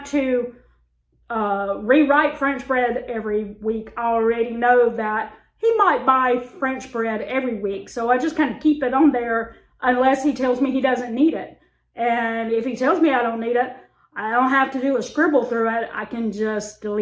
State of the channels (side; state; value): both; identical; correlation 1.00